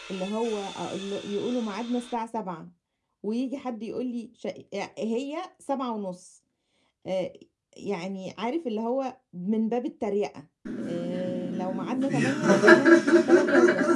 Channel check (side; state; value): both; identical; correlation 1.00